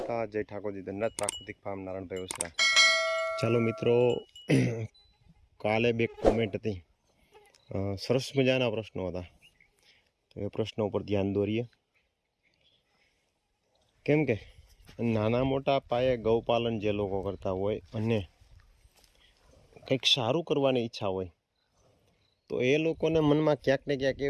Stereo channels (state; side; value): identical; both; correlation 1.00